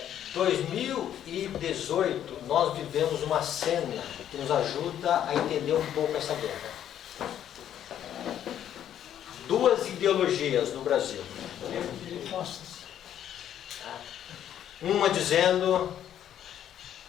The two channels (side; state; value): right; quieter; 10.4 dB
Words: 2018, nós vivemos uma cena que nos ajuda a entender um pouco essa guerra. Duas ideologias no Brasil. Uma dizendo